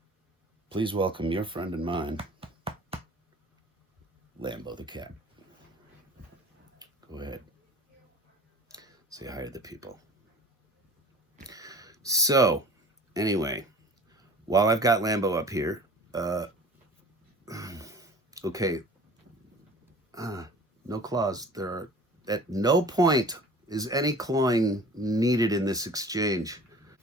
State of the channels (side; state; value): both; normal; correlation 0.44